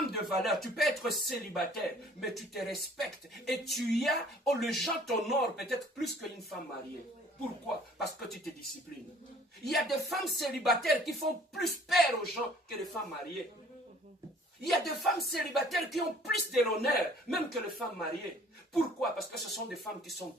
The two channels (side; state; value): both; normal; correlation 0.54